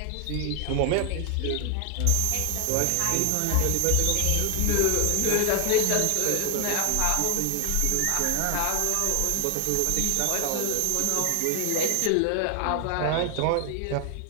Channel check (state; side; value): different; both; correlation 0.01